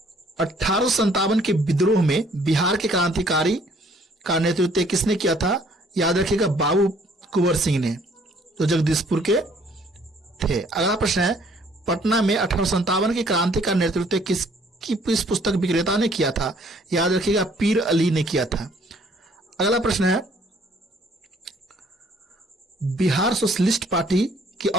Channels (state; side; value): normal; both; correlation 0.61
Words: 1857 के विद्रोह में बिहार के क्रांतिकारी का नेतृत्व किसने किया था? याद रखिएगा, बाबू कुंवर सिंह ने, जो जगदीशपुर के थे। अगला प्रश्न है, पटना में 1857 की क्रांति का नेतृत्व किस पुस्तक विक्रेता ने किया था? याद रखिएगा, पीर अली ने किया था। अगला प्रश्न है, बिहार सोशलिस्ट पार्टी की